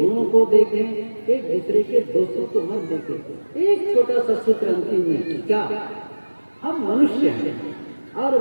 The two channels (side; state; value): both; inverted; correlation -1.00